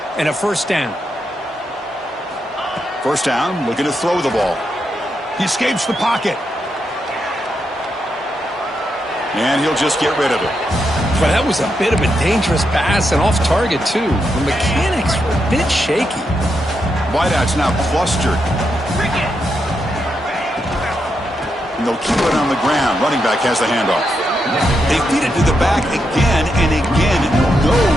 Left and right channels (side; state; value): both; normal; correlation 0.83